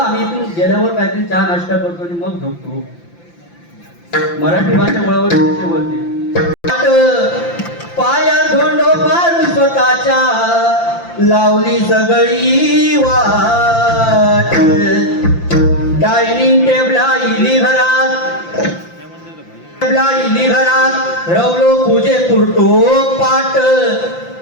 आम्ही इथून गेल्यावर काहीतरी चहा नाश्ता करतो आणि मग झोपतो. मराठी भाषा वळवळ कशी बोलते पाया धोंडो मारून स्वतःच्या लावली सगळी वाट डायनिंग टेबला इली घरात रवलो पूजे पुरतो पाट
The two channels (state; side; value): late; right; 5.8 ms